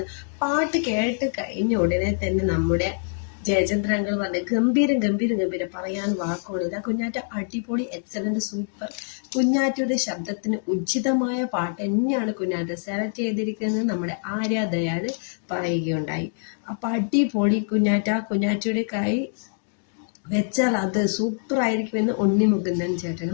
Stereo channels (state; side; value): silent; right; digital silence